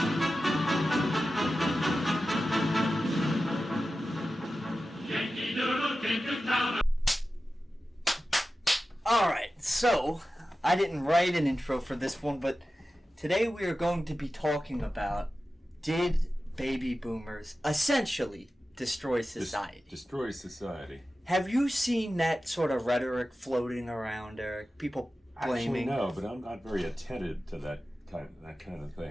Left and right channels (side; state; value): both; normal; correlation 0.94